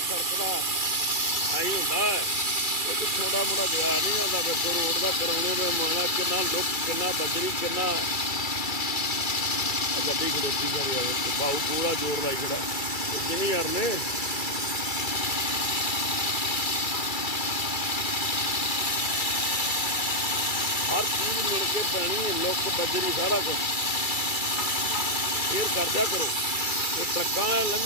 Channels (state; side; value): late; right; 2.3 ms